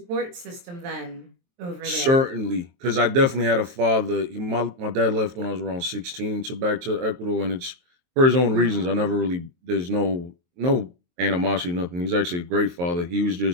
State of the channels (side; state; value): left; late; 23 ms